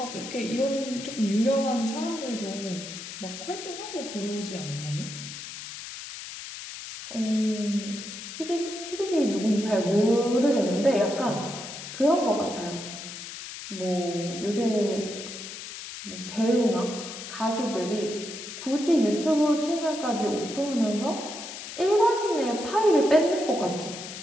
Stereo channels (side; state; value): left; noise; hiss, 10 dB below the sound